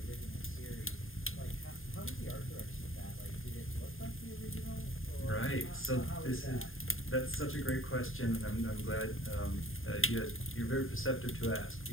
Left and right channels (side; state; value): right; late; 0.59 ms